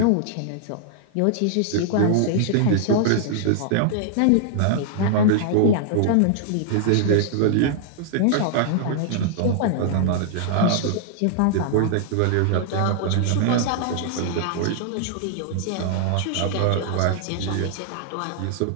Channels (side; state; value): both; different; correlation -0.01